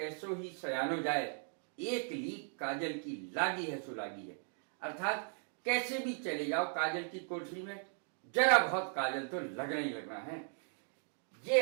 ही सयानो जाए, एक लीक काजल की लागी है सो लागी है। अर्थात कैसे भी चले जाओ काजल की कोठरी में, जरा बहुत काजल तो लगना ही लगना है।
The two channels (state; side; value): silent; left; 53 dB below the other